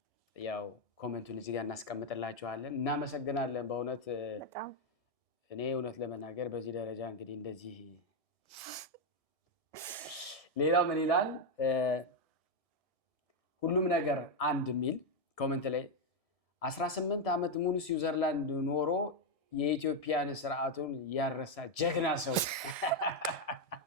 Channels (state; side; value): late; right; 1.7 ms